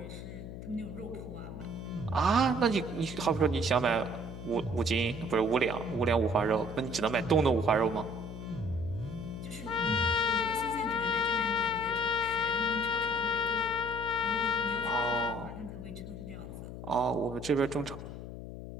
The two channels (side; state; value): left; noise; hum, 10 dB below the sound